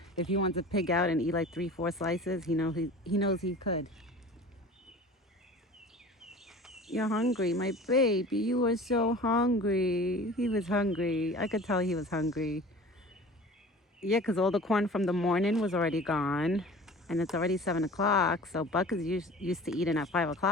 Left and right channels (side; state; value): both; normal; correlation 0.41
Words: If he wants to pig out and eat like 3-4 slices, he knows he could. You're hungry, my baby. You were so hungry. He was hungry. I could tell he was hungry. Yeah, because all the corn from the morning was already gone. And it's already 7 o'clock. So Buck is used to eating at 5